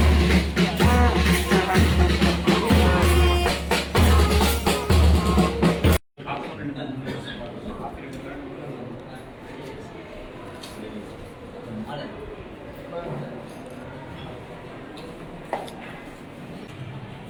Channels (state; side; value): identical; both; correlation 1.00